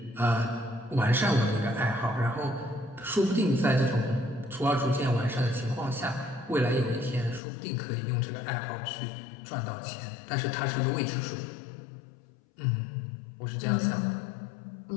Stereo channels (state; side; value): drops out; right; at 7.4 s